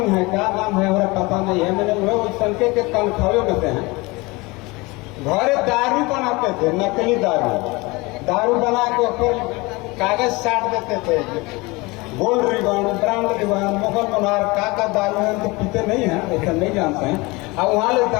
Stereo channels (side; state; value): right; quieter; 24.1 dB